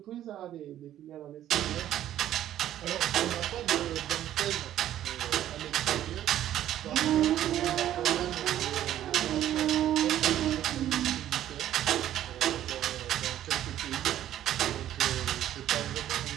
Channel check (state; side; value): quieter; left; 12.1 dB